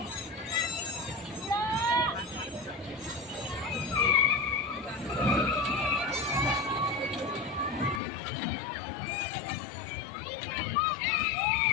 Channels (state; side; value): drops out; right; at 8.0 s